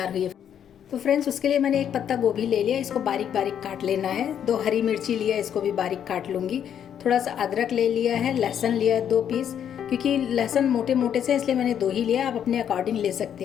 हुई है। तो फ्रेंड्स, उसके लिए मैंने एक पत्ता गोभी ले लिया, इसको बारीक बारीक काट लेना है। 2 हरी मिर्ची लिया, इसको भी बारीक काट लूँगी। थोड़ा सा अदरक ले लिया है, लहसुन लिया है 2 पीस, क्योंकि लहसुन मोटे मोटे से इसलिए मैंने 2 ही लिया, आप अपने अकॉर्डिंग ले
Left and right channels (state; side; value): quieter; right; 9.1 dB